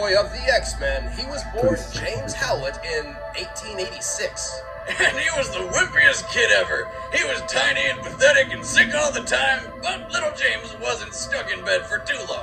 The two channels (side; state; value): both; identical; correlation 1.00